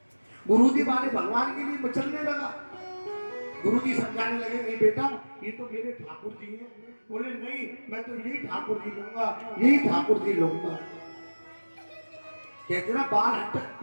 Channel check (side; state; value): both; inverted; correlation -1.00